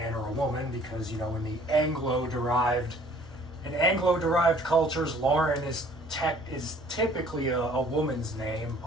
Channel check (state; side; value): normal; both; correlation 0.55